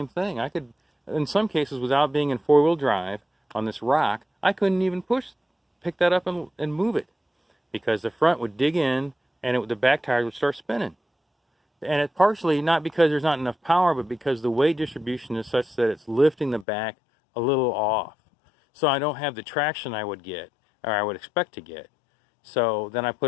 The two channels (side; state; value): right; drops out; at 16.7 s